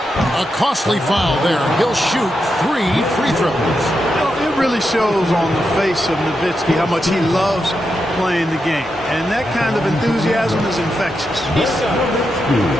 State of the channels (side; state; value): both; normal; correlation 0.86